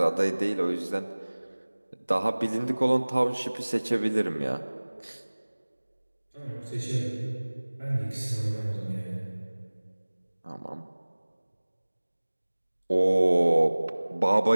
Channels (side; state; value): both; inverted; correlation -1.00